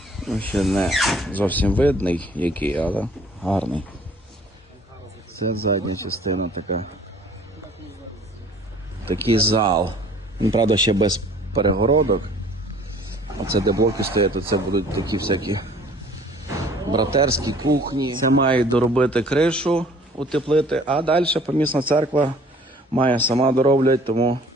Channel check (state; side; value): normal; both; correlation 0.53